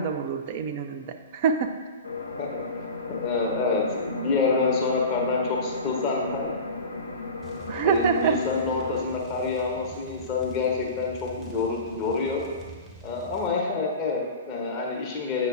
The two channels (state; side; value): inverted; both; correlation -0.32